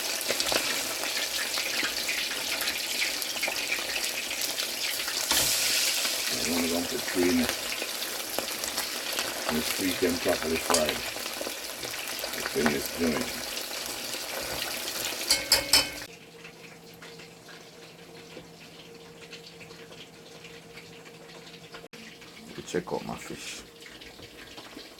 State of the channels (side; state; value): both; identical; correlation 1.00